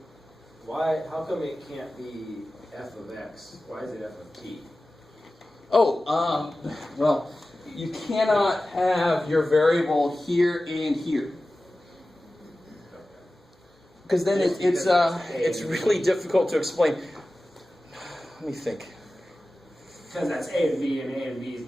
how come it can't be f of x? Why is it f of t? Well, you cannot have your variable here and here. Because then it's really difficult to explain. Let me think. Because that's A and B is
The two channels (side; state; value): both; normal; correlation 0.96